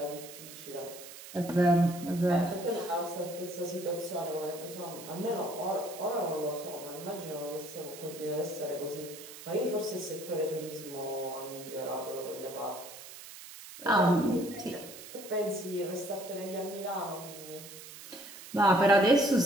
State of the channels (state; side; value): noise; right; hiss, 14 dB below the sound